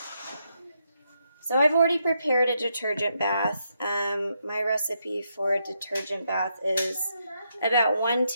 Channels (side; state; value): both; inverted; correlation -0.80